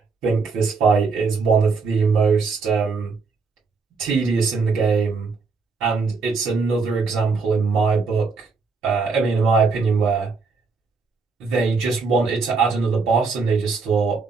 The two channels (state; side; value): quieter; left; 4.5 dB